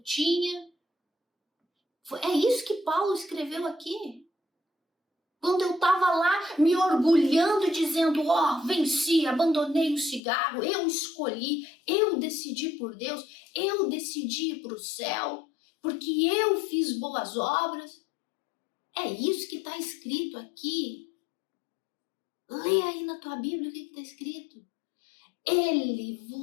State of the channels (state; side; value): drops out; right; at 10.2 s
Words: tinha. É isso que Paulo escreveu aqui. Quando eu estava lá me orgulhando, dizendo, venci, abandonei o cigarro, eu escolhi, eu decidi por Deus, eu decidi ir para o céu, porque eu fiz boas obras. É isso que está escrito aqui. Lê aí na tua Bíblia o que está escrito. Ele